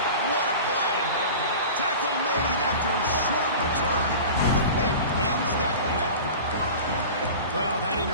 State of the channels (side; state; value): both; inverted; correlation -0.36